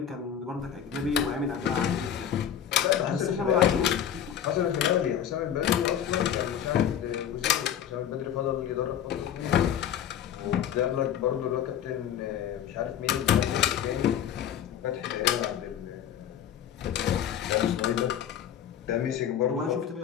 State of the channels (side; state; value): right; quieter; 9.5 dB